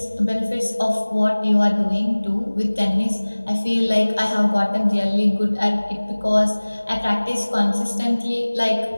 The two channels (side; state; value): both; inverted; correlation -1.00